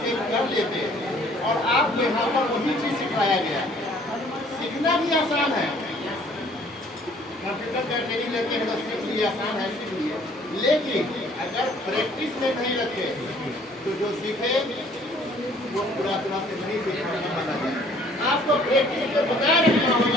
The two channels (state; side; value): normal; both; correlation 0.58